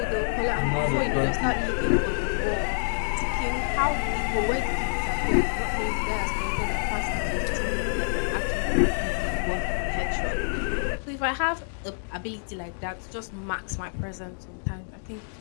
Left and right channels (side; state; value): right; silent; 60 dB below the other